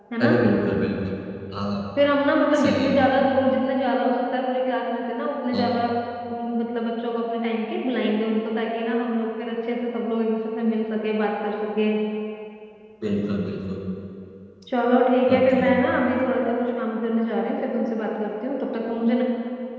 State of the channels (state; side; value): identical; both; correlation 1.00